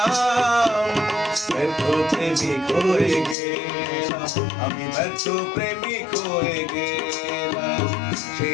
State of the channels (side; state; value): right; drops out; at 3.4 s